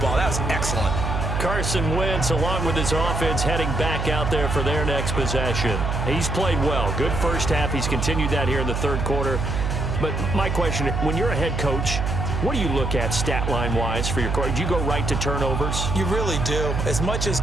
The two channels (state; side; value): noise; right; hum, 1 dB below the sound